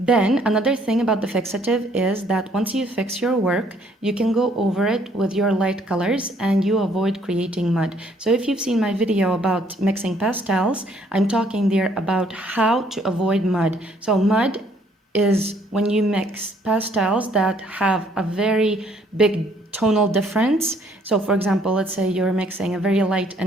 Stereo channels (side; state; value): both; normal; correlation 0.64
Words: another thing about the fixative is that once you fix your work, you can go over it with your light colors and you avoid creating mud. So if you've seen my video about mixing pastels, I'm talking there about how to avoid mud. So mud is when you mix pastels that have a very big tonal difference. So for example, let's say you're mixing a very light